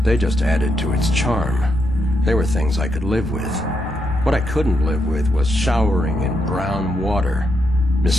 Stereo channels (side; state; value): both; normal; correlation 0.81